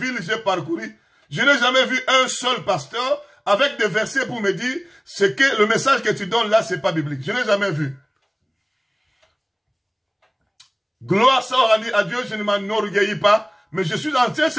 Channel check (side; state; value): both; identical; correlation 1.00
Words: que j'ai parcouru, je n'ai jamais vu un seul pasteur avec des versets pour me dire que le message que tu donnes là, c'est pas biblique. Je n'ai jamais vu. Gloire soit à Dieu, je ne m'enorgueillis pas, mais je suis en train